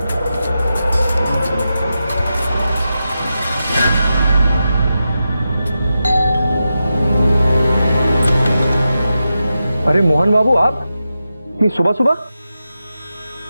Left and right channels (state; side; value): inverted; both; correlation -0.90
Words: अरे मोहन बाबू, आप इतनी सुबह सुबह?